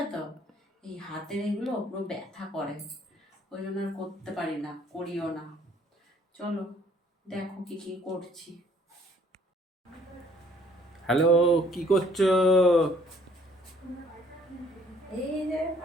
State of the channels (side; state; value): both; normal; correlation 0.60